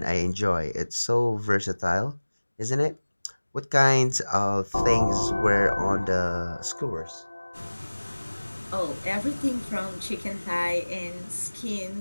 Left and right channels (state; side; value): inverted; both; correlation -1.00